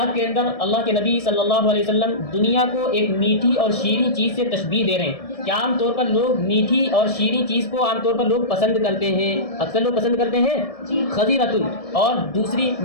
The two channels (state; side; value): late; right; 1.7 ms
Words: کے اندر اللہ کے نبی صلی اللہ علیہ وسلم دنیا کو ایک میٹھی اور شیریں چیز سے تشبیہ دے رہے ہیں کہ عام طور پر لوگ میٹھی اور شیریں چیز کو عام طور پر لوگ پسند کرتے ہیں، اکثر لوگ پسند کرتے ہیں خضرۃ، اور دوسری